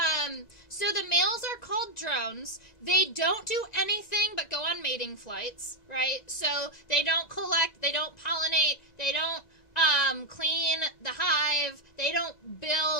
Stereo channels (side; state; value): right; late; 2.0 ms